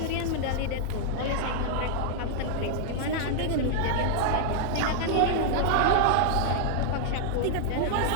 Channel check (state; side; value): different; both; correlation -0.01